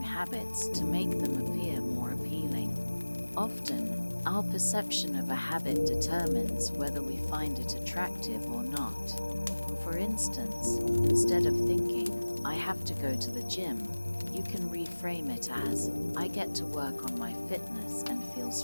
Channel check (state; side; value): inverted; both; correlation -1.00